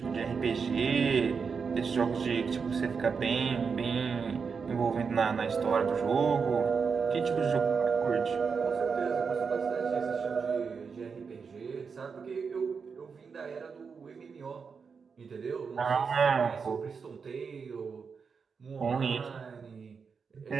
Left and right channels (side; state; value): left; quieter; 5.6 dB